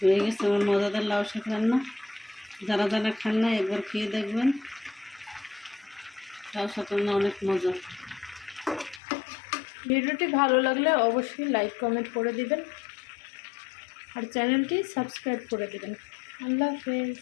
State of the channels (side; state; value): right; drops out; at 9.0 s